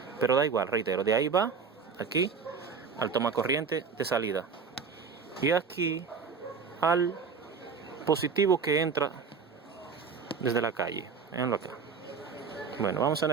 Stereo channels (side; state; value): left; quieter; 5.7 dB